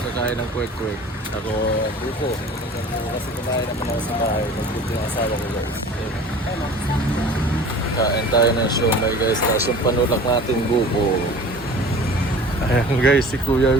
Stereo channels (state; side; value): normal; both; correlation 0.42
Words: ng kwek-kwek. Ako buko. Kasi kumain naman ako sa bahay. Nagbuto yung asawa ko guys. Kain tayo ng siomay guys. Tapos yung panulak natin buko. Ayan guys, si Kuya